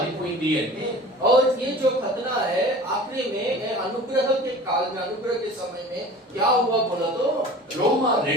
అంటే और ये जो खतना है आखिरी में अनुग्रह के काल में, अनुग्रह के समय में क्या हुआ बोला तो రోమా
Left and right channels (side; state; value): both; normal; correlation 0.41